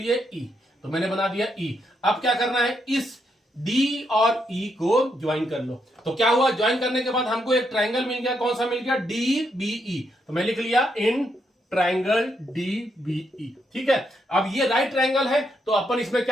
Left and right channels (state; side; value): normal; both; correlation 0.79